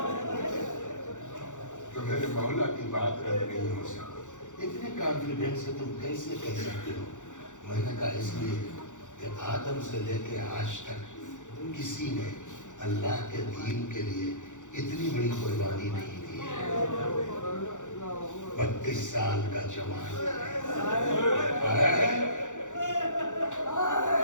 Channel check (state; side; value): late; right; 0.86 ms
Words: تو میرے مولا کی بات رد نہیں ہو سکتی۔ اتنے کانفیڈنس سے تم کیسے کہہ سکتے ہو؟ میں نے کہا اس لیے کہ آدم سے لے کے آج تک کسی نے اللہ کے دین کے لیے اتنی بڑی قربانی نہیں دی ہے۔ 32 سال کا جوان ہے،